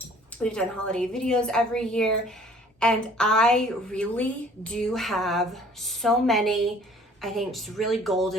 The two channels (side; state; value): both; normal; correlation 0.53